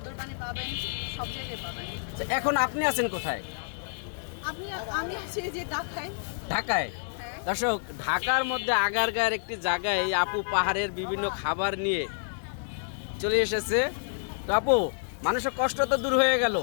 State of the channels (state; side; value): silent; right; digital silence